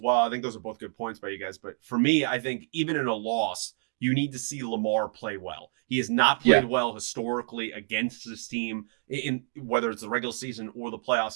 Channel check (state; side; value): silent; left; 59 dB below the other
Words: well, I think those are both good points by you guys. But for me, I think even in a loss, you need to see Lamar play well. He has not Yeah. played well historically against this team in whether it's the regular season or the